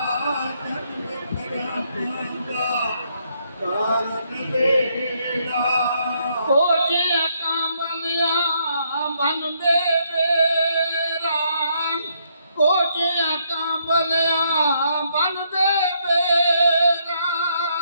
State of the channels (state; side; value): inverted; both; correlation -0.73